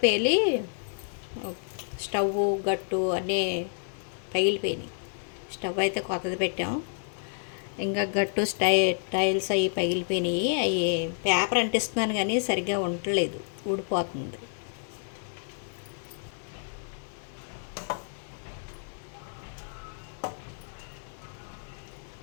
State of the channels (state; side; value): silent; right; digital silence